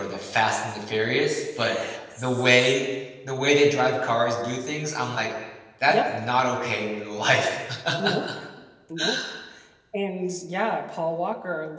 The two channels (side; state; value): both; identical; correlation 1.00